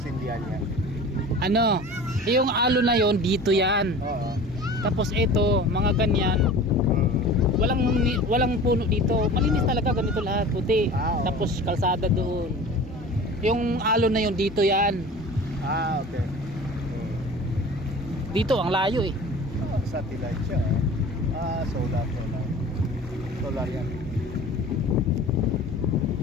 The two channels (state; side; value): normal; both; correlation 0.39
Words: sindihan niya. ano, yung alo na yon dito yan. Oo. Tapos ito, mga ganyan, walang puno dito. Malinis talaga, ganito lahat, puti. Oo. Tapos kalsada doon. Yung alo na yon dito yan. Ah, okay. Dito ang layo eh. Satellite siya. Ah, solar. Solar yan.